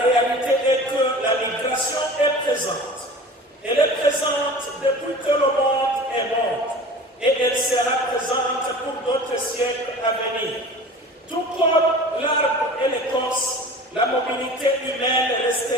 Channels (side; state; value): both; normal; correlation 0.39